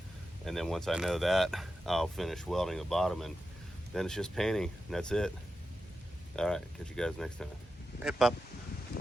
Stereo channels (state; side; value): normal; both; correlation 0.90